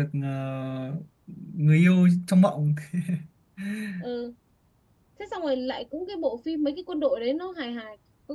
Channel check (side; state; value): both; identical; correlation 1.00